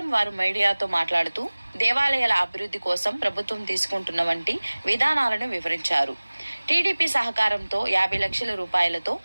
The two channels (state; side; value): inverted; both; correlation -1.00